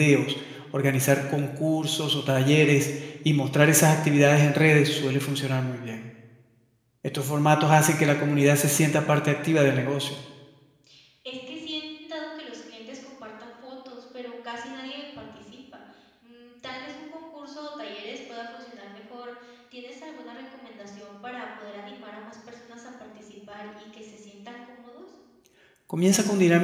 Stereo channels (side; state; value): both; identical; correlation 1.00